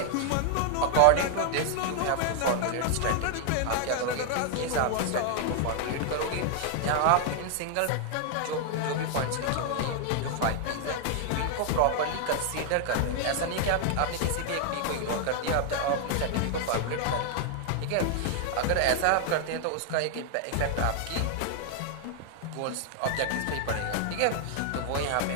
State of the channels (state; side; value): different; both; correlation 0.00